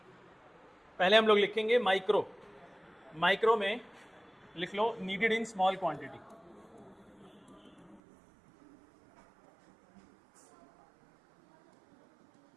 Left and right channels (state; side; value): drops out; left; at 8.0 s